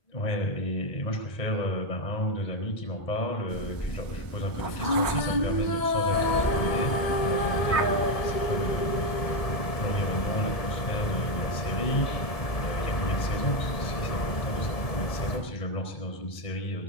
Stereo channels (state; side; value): late; right; 1.7 ms